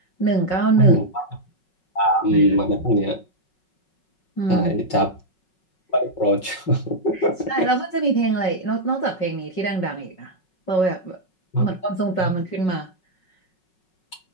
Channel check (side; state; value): right; late; 5.4 ms